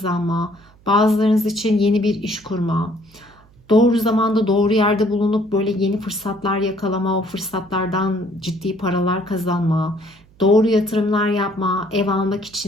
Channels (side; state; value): right; noise; hum, 28 dB below the sound